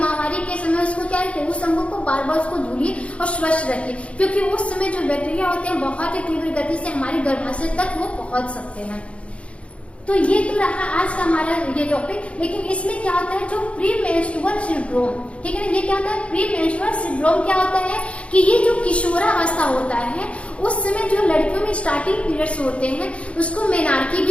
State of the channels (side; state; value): right; late; 0.061 ms